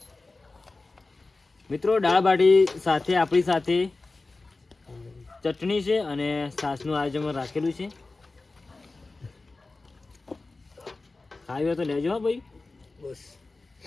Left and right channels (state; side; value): quieter; right; 3.5 dB